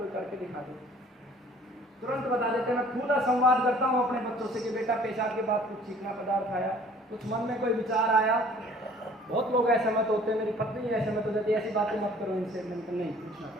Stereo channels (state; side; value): normal; both; correlation 0.52